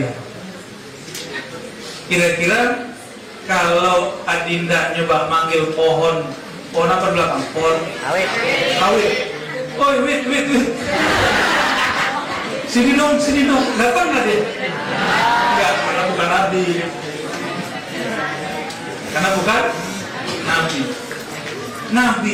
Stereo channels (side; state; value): both; identical; correlation 1.00